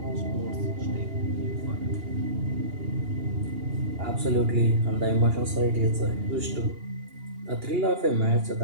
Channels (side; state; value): left; late; 2.8 ms